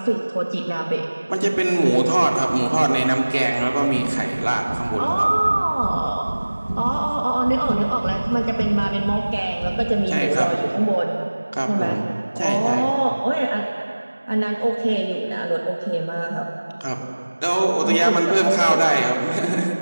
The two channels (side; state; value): both; inverted; correlation -1.00